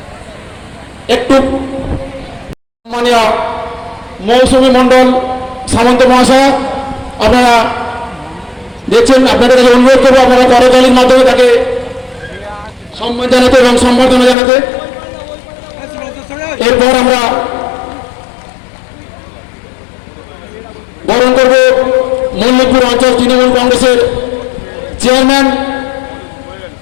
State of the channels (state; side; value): drops out; right; at 14.4 s